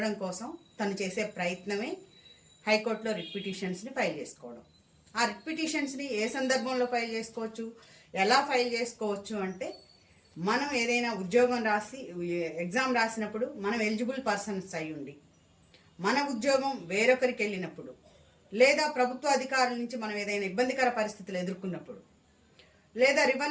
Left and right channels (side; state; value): both; identical; correlation 1.00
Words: కోసం తను చేసే ప్రయత్నమే హైకోర్టులో రిట్ పిటిషన్స్ని ఫైల్ చేసుకోవడం. ఆ రిట్ పిటిషన్స్ని ఏ సందర్భంలో ఫైల్ చేసుకోవచ్చు, ఎలా ఫైల్ చేసుకోవచ్చు అంటే, మనం ఏదైనా ఉద్యోగం రాసి ఎగ్జామ్ రాసినప్పుడు మనం ఎలిజిబుల్ పర్సన్స్ అయి ఉండి, మన ఉద్యోగం వేరొకరికి వెళ్ళినప్పుడు, లేదా ప్రభుత్వ అధికారుల నుంచి మనం ఏదైనా ఇబ్బందికర పరిస్థితులు ఎదుర్కొన్నప్పుడు, లేదా